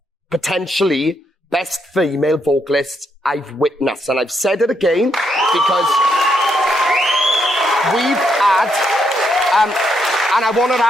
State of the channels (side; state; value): both; normal; correlation 0.77